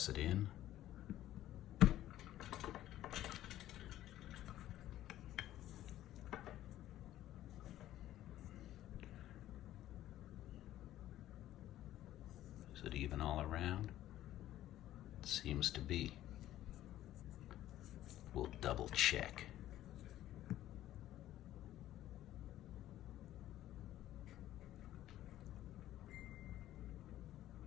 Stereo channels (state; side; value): quieter; right; 13.5 dB